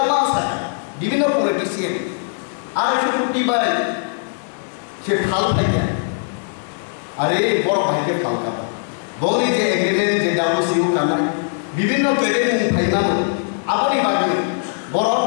আছে বিভিন্ন পলিটিশিয়ান 250 কোটি বাই সে ফাল থাকে আরে বড় ভাইকে ফাল কাটা বলি যে এগ্রিমেন্ট যে ডাব্লিউসিও কানা বিভিন্ন পেটে ফাইনাল আপনি বাকি বড়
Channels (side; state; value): right; silent; 66 dB below the other